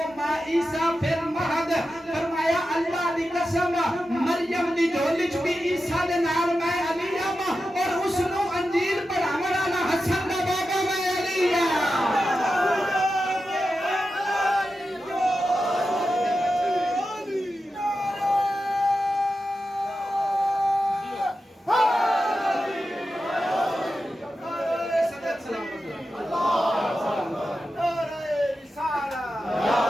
ما عیسیٰ پھر مہد فرمایا اللہ دی قسم مریم دی جھولی چ بھی عیسیٰ دے نال میں علی ہوں اور اس نو انجیل پڑھاون والا حسن دا بابا میں علی ہوں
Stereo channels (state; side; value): normal; both; correlation 0.91